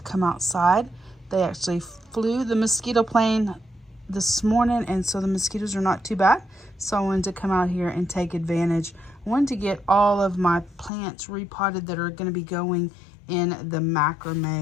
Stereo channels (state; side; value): drops out; right; at 10.9 s